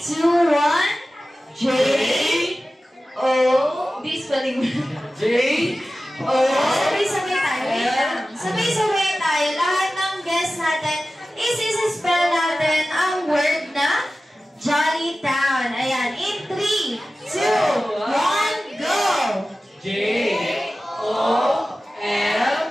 1, J, O, di-spelling mo. J, O, Sabay-sabay tayo. Wait lang. Sabay-sabay tayo. Lahat ng guests natin, is-spell natin ang word na Jolly Town. Ayan. In 3, 2, 1, go! J, O, L,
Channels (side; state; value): both; normal; correlation 0.95